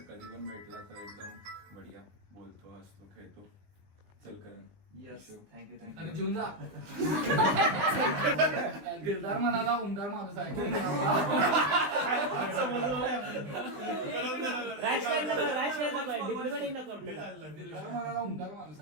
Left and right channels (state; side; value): late; left; 20 ms